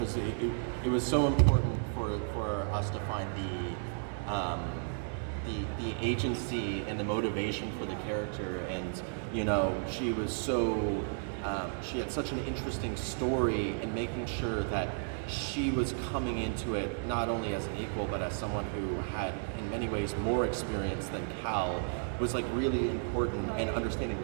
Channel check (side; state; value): left; silent; digital silence